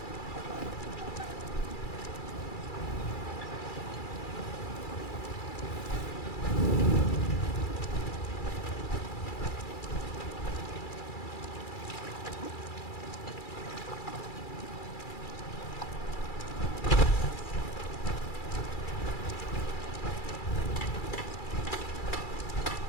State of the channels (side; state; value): right; late; 2.3 ms